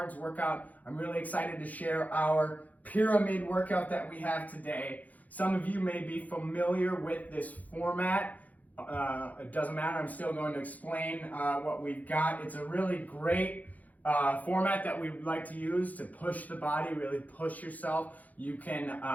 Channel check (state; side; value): late; right; 0.078 ms